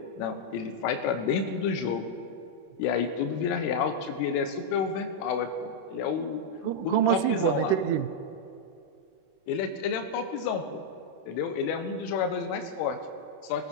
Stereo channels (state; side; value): late; right; 26 ms